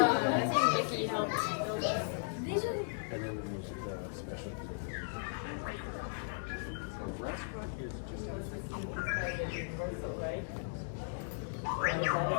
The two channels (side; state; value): right; silent; digital silence